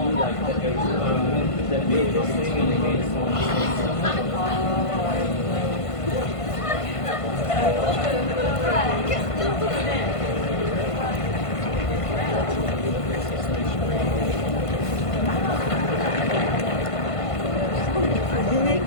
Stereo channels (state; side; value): late; right; 1.5 ms